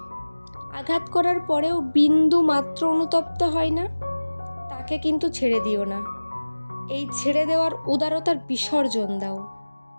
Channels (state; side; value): inverted; both; correlation -1.00